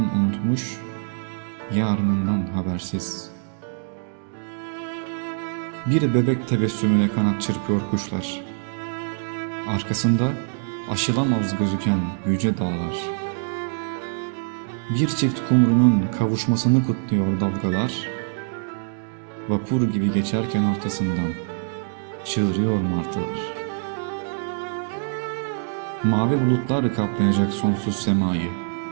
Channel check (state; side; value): silent; left; digital silence